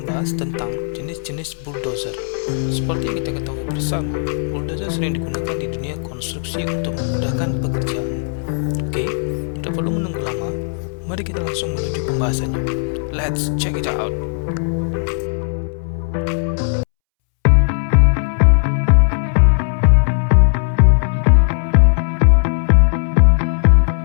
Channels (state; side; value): silent; right; 68 dB below the other